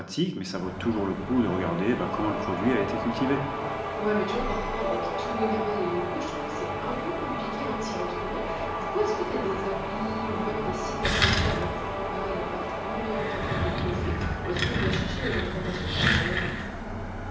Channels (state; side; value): identical; both; correlation 1.00